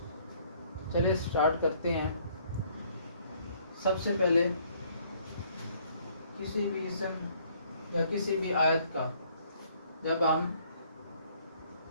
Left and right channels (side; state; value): both; inverted; correlation -0.62